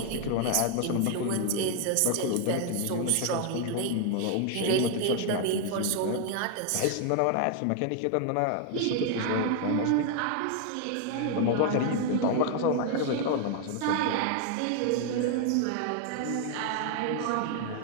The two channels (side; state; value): both; different; correlation 0.00